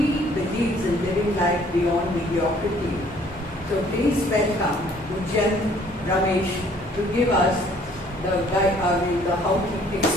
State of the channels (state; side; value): normal; both; correlation 0.59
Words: believes in living life beyond mediocrity. So please welcome Ujyant Ramesh to give us the how he